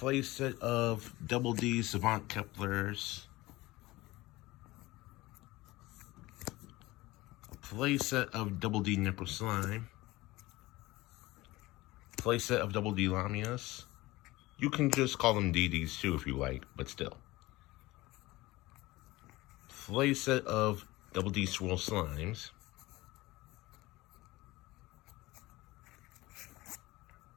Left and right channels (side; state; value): right; quieter; 19.6 dB